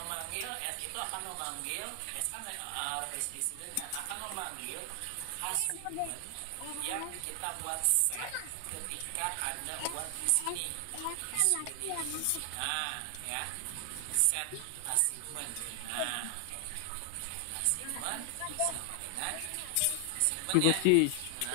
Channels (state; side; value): different; both; correlation 0.00